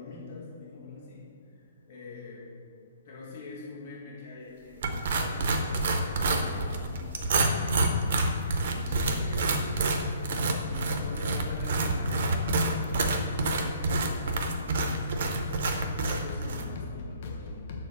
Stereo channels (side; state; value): both; inverted; correlation -0.60